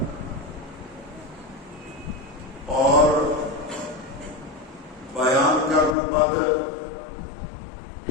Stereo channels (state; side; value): drops out; right; at 6.0 s